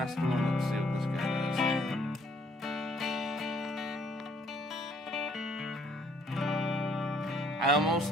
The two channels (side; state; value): both; normal; correlation 0.64